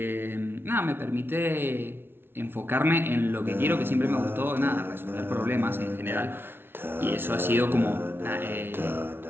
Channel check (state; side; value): late; left; 0.11 ms